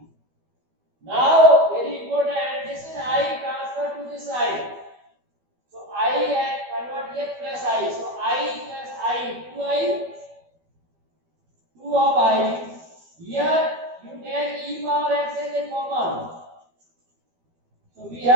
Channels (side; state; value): left; late; 12 ms